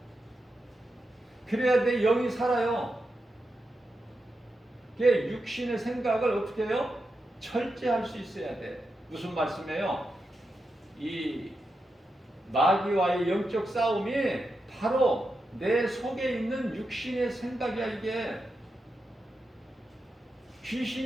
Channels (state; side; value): normal; both; correlation 0.88